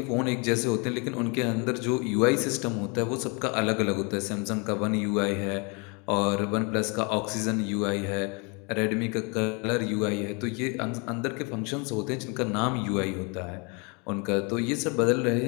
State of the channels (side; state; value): right; quieter; 32.2 dB